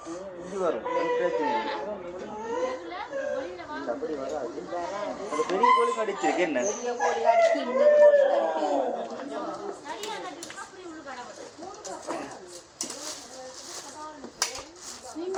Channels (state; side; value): identical; both; correlation 1.00